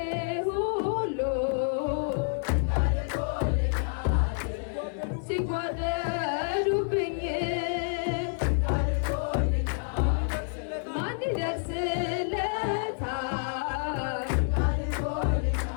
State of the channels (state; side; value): silent; right; 58 dB below the other